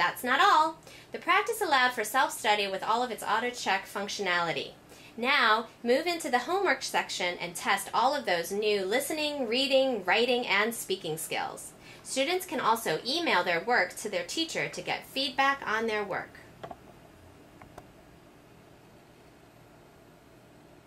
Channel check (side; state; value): both; identical; correlation 1.00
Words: not all. The practice allowed for self-study with all of its auto-check functionality. Now, move into the homework section and test all of those new listening, reading, writing, and speaking skills. Students can also email their work to their teacher to get feedback on their work.